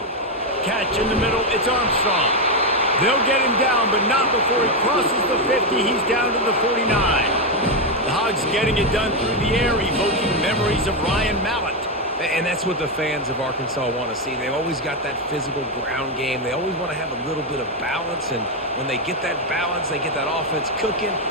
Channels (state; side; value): normal; both; correlation 0.06